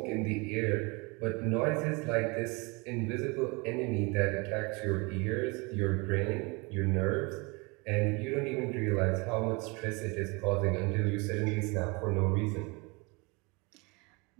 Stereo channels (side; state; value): left; quieter; 28.0 dB